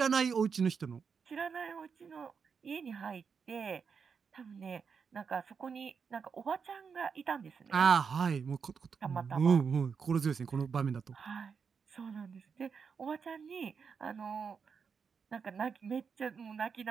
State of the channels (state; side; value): quieter; left; 6.0 dB